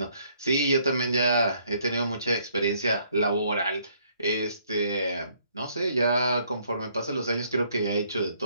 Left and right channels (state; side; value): inverted; both; correlation -0.66